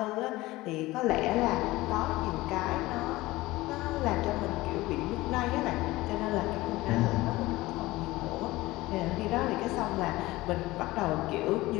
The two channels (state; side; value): quieter; right; 19.0 dB